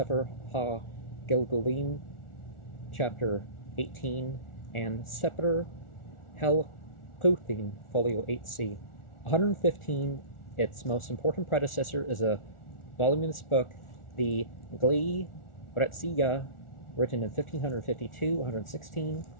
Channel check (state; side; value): late; right; 1.4 ms